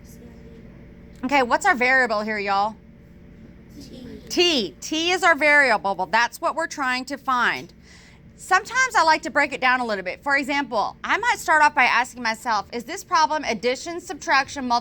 Sandy earned. Okay, what's our variable here, y'all? T. T is our variable. Well, that's what we're trying to find. Sometimes I like to break it down a little bit. For example, I might start off by asking myself, is this problem addition, subtraction,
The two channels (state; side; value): identical; both; correlation 1.00